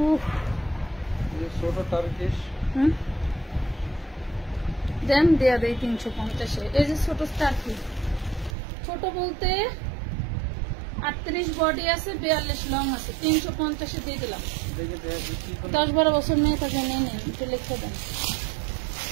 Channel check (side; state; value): left; drops out; at 8.5 s